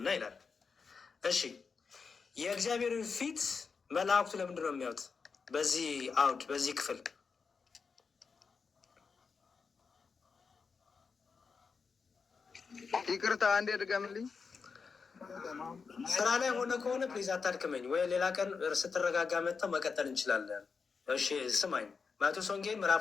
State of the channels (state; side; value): quieter; right; 5.3 dB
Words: ይላል። እሺ የእግዚአብሔርን ፊት መላእክቱ ለምንድን ነው የሚያዩት? በዚህ አውድ በዚህ ክፍል ይቅርታ አንዴ ድገምልኝ። ስራ ላይ ሆነ ከሆነ ፕሊዝ አታድክመኝ፣ ወይ ሌላ ቀን ስትረጋጋ መጥተው መቀጠል እንችላለን። እሺ ስማኝ። ማቴዎስ ወንጌል